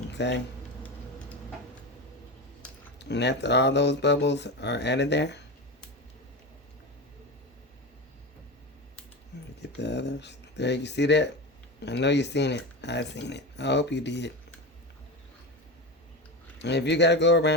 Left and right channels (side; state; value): both; normal; correlation 0.22